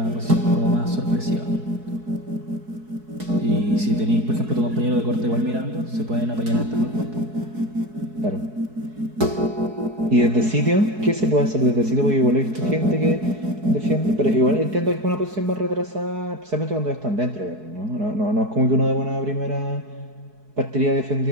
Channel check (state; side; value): late; left; 4.7 ms